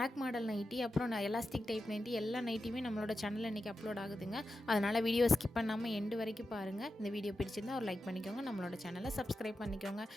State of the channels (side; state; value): both; normal; correlation 0.90